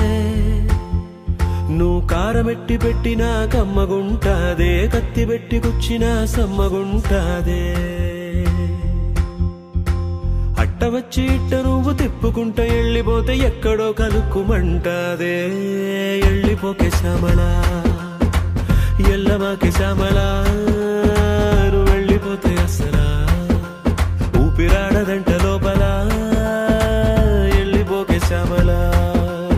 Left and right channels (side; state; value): both; identical; correlation 1.00